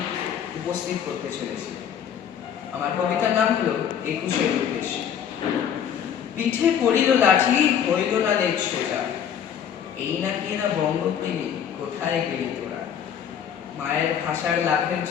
উপস্থিত করতে চলেছি। আমার কবিতার নাম হলো ২১-এর উদ্দেশ্যে। পিঠে পড়িল লাঠি, হইল না লেজ সোজা, এই নাকি এরা বঙ্গপ্রেমী, কোথায় গেলি তোরা? মায়ের ভাষার লাভের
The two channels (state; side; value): quieter; right; 8.6 dB